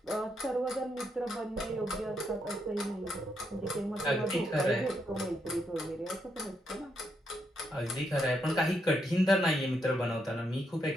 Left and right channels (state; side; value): normal; both; correlation 0.79